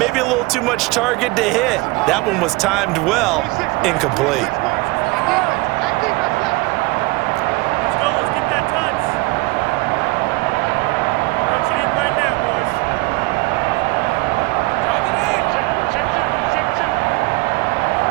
a little too much target to hit. That one was timed well, incomplete.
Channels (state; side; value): quieter; left; 24.0 dB